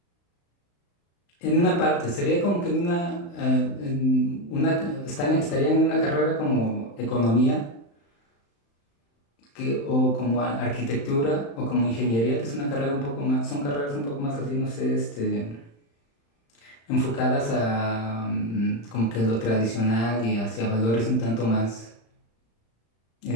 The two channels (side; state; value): right; late; 35 ms